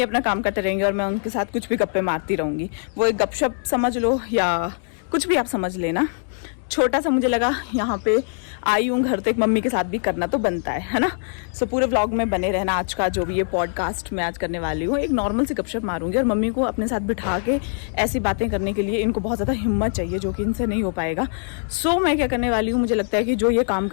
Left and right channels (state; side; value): silent; right; 58 dB below the other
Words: अपना काम करते रहेंगे और मैं उनके साथ कुछ भी गप्पे मारती रहूँगी। वो एक गपशप समझ लो या कुछ भी आप समझ लेना। छोटा सा मुझे लगा यहाँ पे आई हूँ घर, तो एक मम्मी के साथ भी करना तो बनता है ना। सो पूरे व्लॉग में बने रहना। आज का जो भी ये पॉडकास्ट मैं आज करने वाली हूँ, एक नॉर्मल सी गपशप मारूंगी और मम्मी को अपने साथ बिठा के ऐसी बातें करने के लिए इनको बहुत ज़्यादा हिम्मत चाहिए, जो कि इनसे नहीं हो पाएगा। सो मैं क्या करने वाली हूँ, मुझे लगता है कि जो ये काम